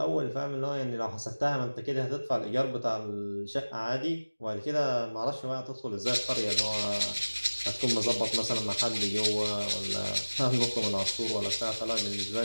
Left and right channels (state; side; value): inverted; both; correlation -1.00